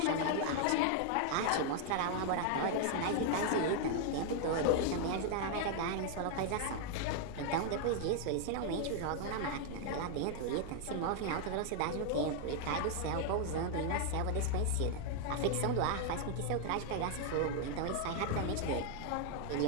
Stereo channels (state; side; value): different; both; correlation 0.00